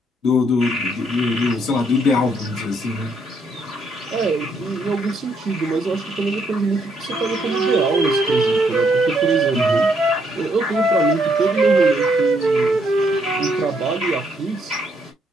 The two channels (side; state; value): both; normal; correlation 0.72